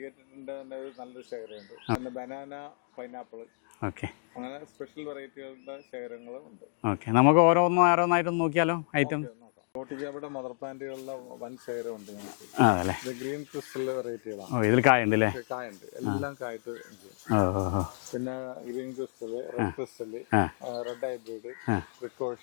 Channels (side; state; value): right; silent; digital silence